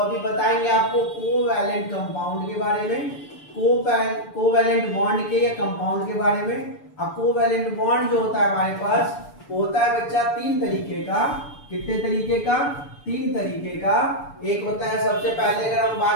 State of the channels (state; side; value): late; right; 6.9 ms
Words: बताएंगे आपको कोवैलेंट कंपाउंड के बारे में, कोवैलेंट बॉन्ड के या कंपाउंड के बारे में। अब कोवैलेंट बॉन्ड जो होता है हमारे पास होता है बच्चा 3 तरीके का। कितने तरीके का? 3 तरीके का। एक होता है सबसे पहले अगर हम